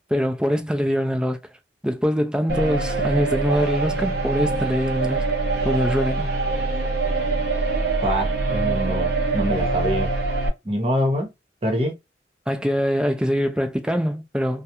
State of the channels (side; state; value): both; normal; correlation 0.60